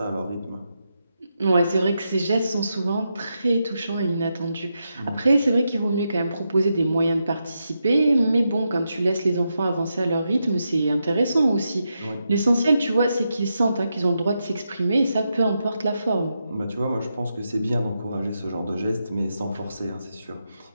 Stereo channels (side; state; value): both; inverted; correlation -0.85